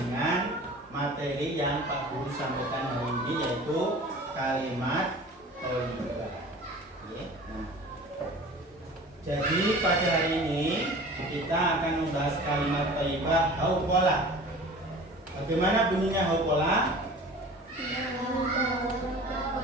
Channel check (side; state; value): both; normal; correlation 0.41